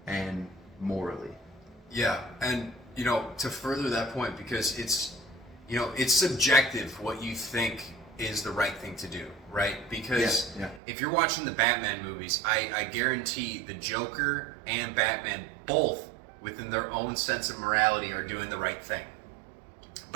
and morally. Yeah, and to further that point, because it's subjective what you think is the right thing to do, right? Because if you're watching the Batman movies, I guarantee the Joker and Batman both, within their own sense of morality, are doing the right thing.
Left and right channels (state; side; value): drops out; left; at 10.8 s